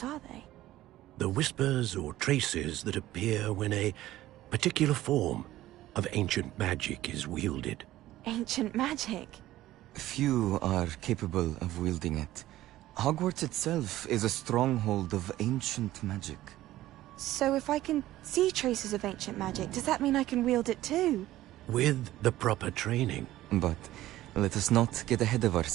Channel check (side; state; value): left; quieter; 15.1 dB